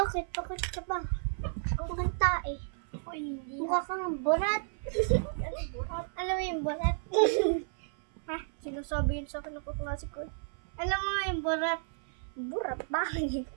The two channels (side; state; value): left; silent; 56 dB below the other